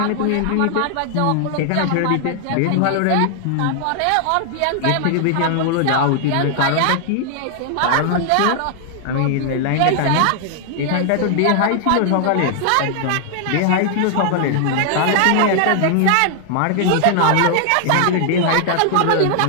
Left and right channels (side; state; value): both; different; correlation 0.00